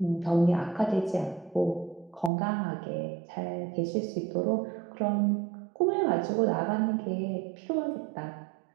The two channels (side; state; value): left; drops out; at 2.3 s